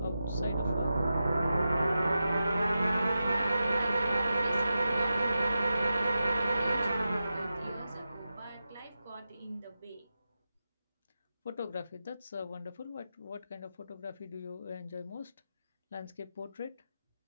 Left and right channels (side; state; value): both; inverted; correlation -0.91